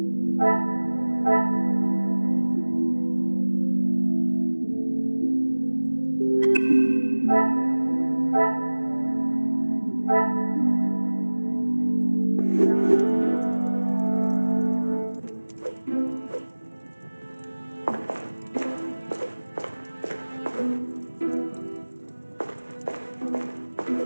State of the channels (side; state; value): both; inverted; correlation -1.00